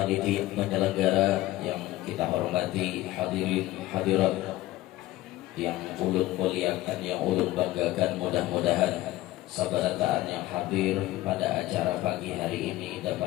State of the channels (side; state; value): right; quieter; 16.5 dB